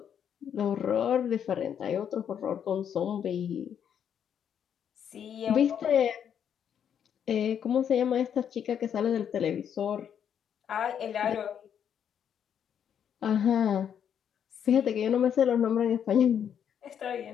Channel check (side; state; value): right; quieter; 8.6 dB